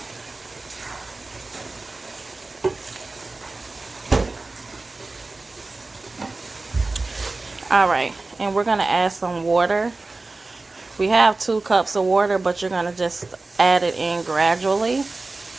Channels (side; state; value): left; quieter; 3.4 dB